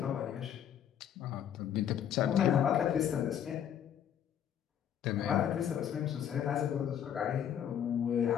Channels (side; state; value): right; quieter; 9.5 dB